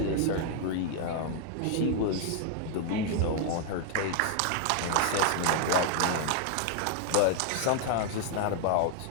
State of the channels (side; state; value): both; different; correlation 0.00